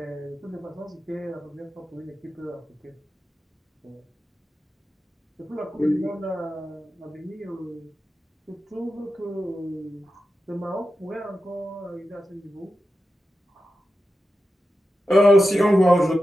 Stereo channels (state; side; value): normal; both; correlation 0.91